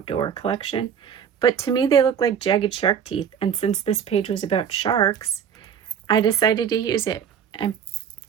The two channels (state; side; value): quieter; left; 7.9 dB